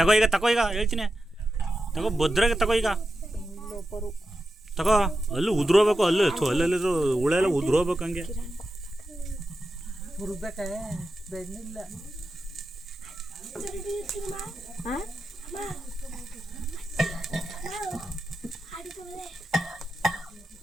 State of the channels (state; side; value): normal; both; correlation 0.90